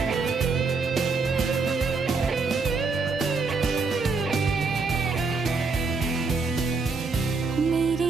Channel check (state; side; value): quieter; left; 4.2 dB